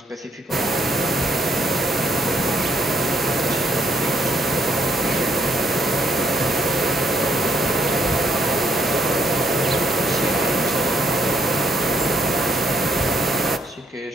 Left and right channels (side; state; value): both; normal; correlation 0.71